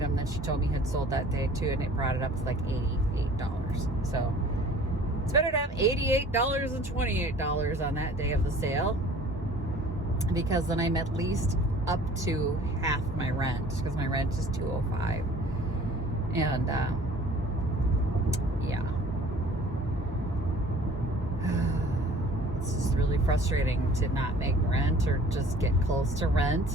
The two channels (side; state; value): both; normal; correlation 0.50